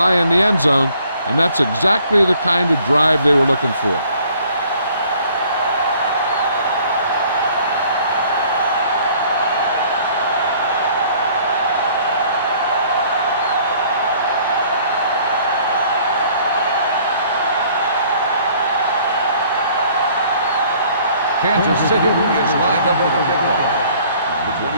on the end zone, and that's exactly the kind of drive they were looking for. Kansas City is lined up with the kickoff. Number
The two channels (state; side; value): inverted; both; correlation -0.57